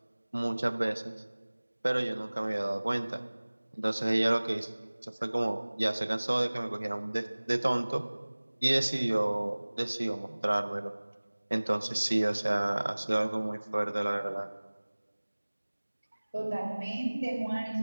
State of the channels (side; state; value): both; inverted; correlation -1.00